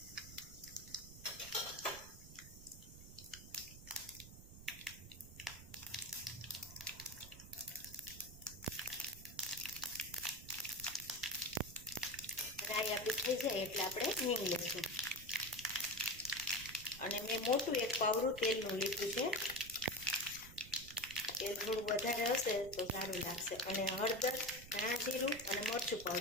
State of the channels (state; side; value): noise; right; rumble, 15 dB below the sound